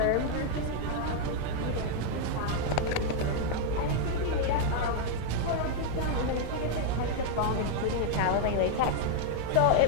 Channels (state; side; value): different; both; correlation 0.00